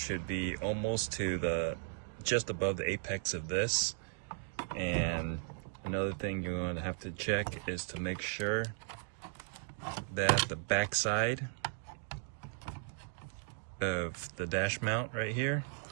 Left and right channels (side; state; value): left; silent; digital silence